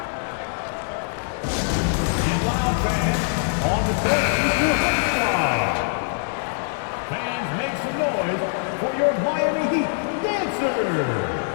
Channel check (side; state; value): right; silent; digital silence